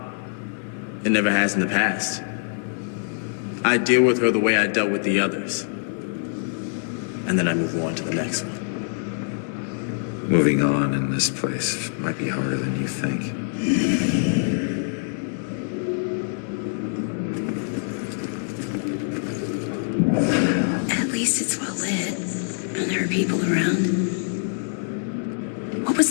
It never has in the past. I deal with her the way I dealt with the others. And then I move on to the next one. Moving on in this place might be harder than you think. At least it's well lit, and there are people around. What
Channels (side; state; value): right; silent; digital silence